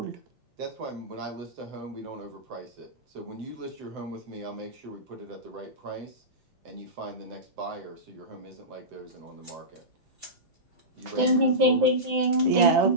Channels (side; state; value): left; late; 6.0 ms